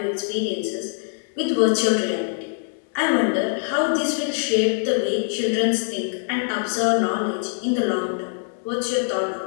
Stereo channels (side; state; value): right; silent; 63 dB below the other